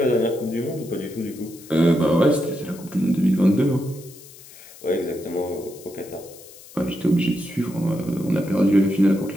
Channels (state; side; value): noise; left; hiss, 20 dB below the sound